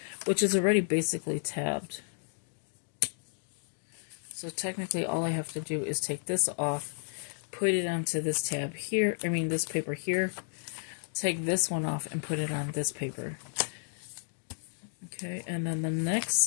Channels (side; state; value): right; silent; digital silence